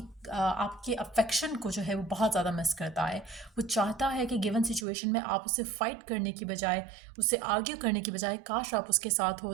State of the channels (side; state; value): left; drops out; at 4.9 s